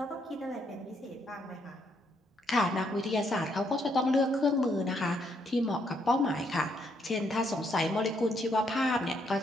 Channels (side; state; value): both; normal; correlation 0.74